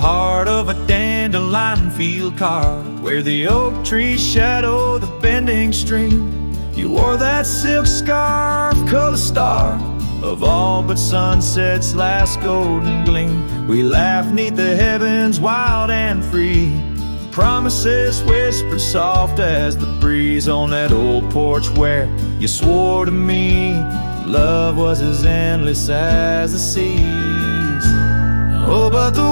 of a dandelion field carved, where the oak trees shadow the bending stream, you wore that silk scarf, color star of all but sunset's last golden gleam. We laughed 'neath the heavens wild and free, promises whispered soft as the breeze on that old porch where you swore to me love was as endless as the seas. Oh, but the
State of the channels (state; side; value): inverted; both; correlation -1.00